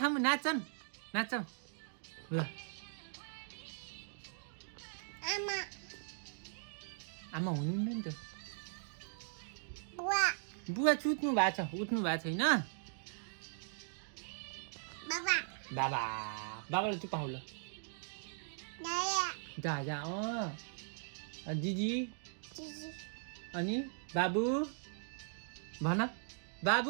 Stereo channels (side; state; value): left; silent; digital silence